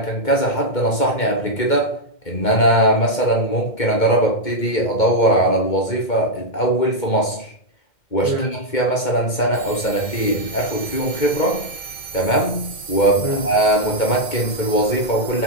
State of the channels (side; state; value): right; late; 2.2 ms